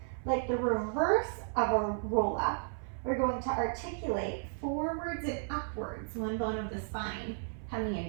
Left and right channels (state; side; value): silent; left; 55 dB below the other